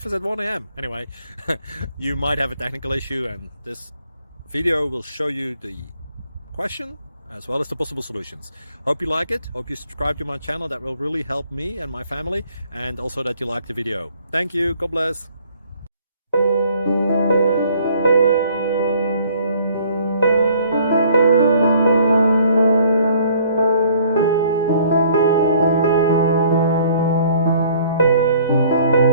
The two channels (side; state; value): both; inverted; correlation -0.58